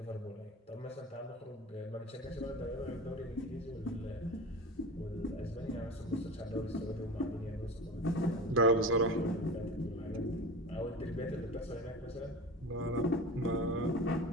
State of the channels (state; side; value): normal; both; correlation 0.32